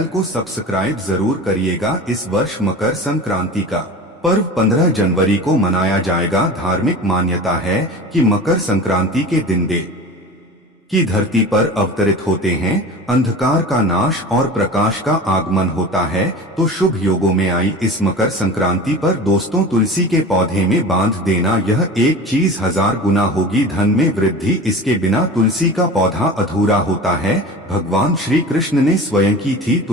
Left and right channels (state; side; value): normal; both; correlation 0.35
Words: को सब्सक्राइब जरूर करिएगा। इस वर्ष मकर संक्रांति का पर्व 15 जनवरी को मनाया जाएगा। धार्मिक मान्यता है कि मकर संक्रांति के दिन देव की धरती पर अवतरित होते हैं, अंधकार का नाश और प्रकाश का आगमन होता है। तो शुभ योगों में आई इस मकर संक्रांति पर दोस्तों तुलसी के पौधे में बांध देना यह एक चीज 1000 गुना होगी धन में वृद्धि। इसके बिना तुलसी का पौधा अधूरा होता है। भगवान श्री कृष्ण ने स्वयं की थी